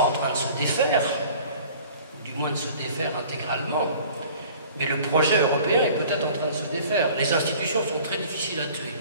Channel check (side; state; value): both; inverted; correlation -0.48